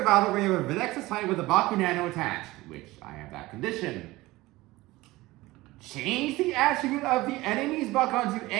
battle where you have a Nexus Titan with a Baku Nano attached, which I have that condition. Change the attribute of the enemy's Bakugan to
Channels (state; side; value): quieter; left; 19.3 dB